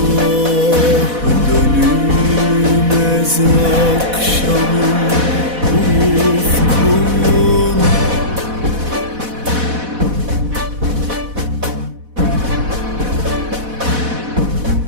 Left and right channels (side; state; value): left; late; 4.1 ms